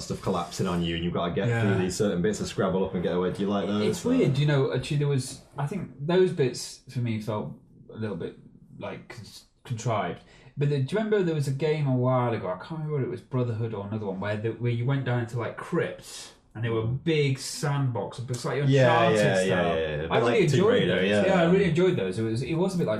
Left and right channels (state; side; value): identical; both; correlation 1.00